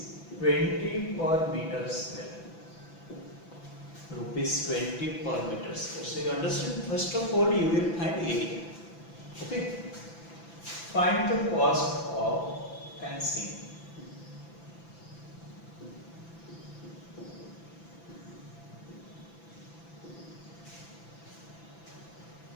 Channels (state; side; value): late; right; 6.0 ms